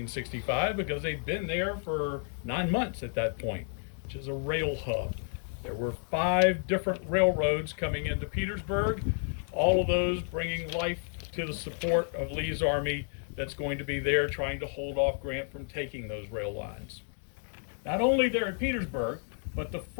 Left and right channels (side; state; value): right; silent; 57 dB below the other